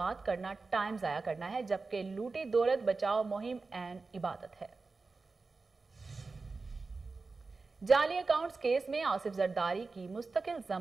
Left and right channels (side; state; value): left; quieter; 4.0 dB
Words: करना टाइम जाया करना है, जबकि लूटी दौलत बचाओ मुहिम एन इबादत है। जाली अकाउंट्स केस में आसिफ जरदारी की मुस्तकिल